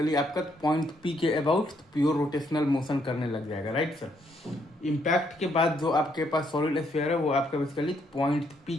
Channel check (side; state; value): both; normal; correlation 0.72